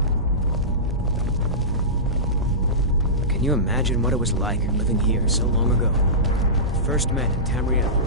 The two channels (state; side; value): normal; both; correlation -0.19